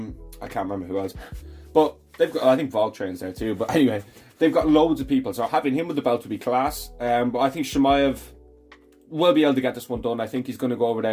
can't remember who else, but they've got, I think Voltrain's there too. But anyway, they've got loads of people, so having him with the belt would be class. But I think Chimaev will be able to get this one done. I think he's going to go over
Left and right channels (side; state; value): both; identical; correlation 1.00